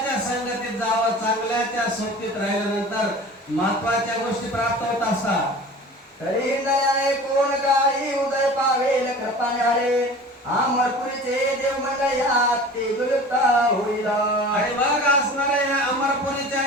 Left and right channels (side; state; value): both; normal; correlation 0.40